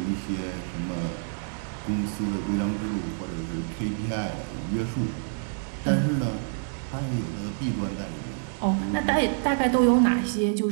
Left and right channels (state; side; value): silent; left; digital silence